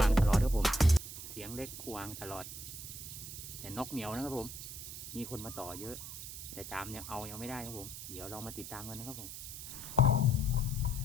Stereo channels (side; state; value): right; noise; hiss, 9 dB below the sound